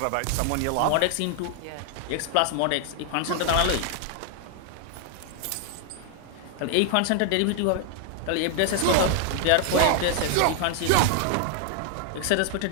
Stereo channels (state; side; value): different; both; correlation 0.00